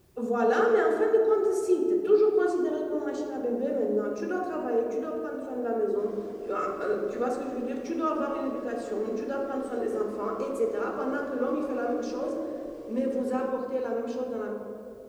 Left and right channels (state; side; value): identical; both; correlation 1.00